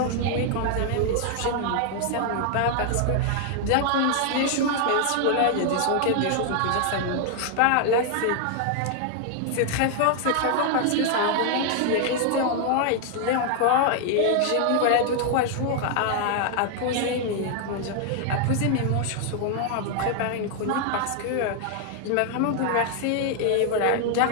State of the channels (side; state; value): both; different; correlation 0.00